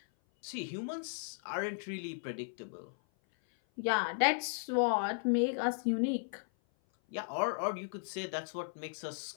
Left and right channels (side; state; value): right; silent; 54 dB below the other